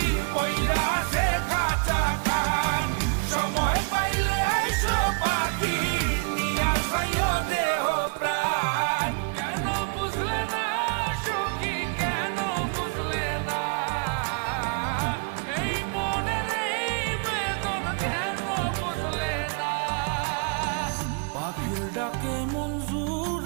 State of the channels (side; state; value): left; quieter; 37.8 dB